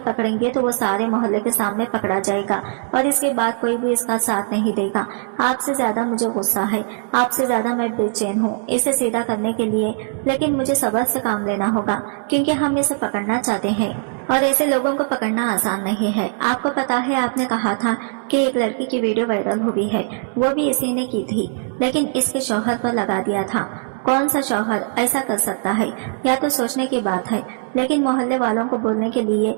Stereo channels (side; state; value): left; silent; digital silence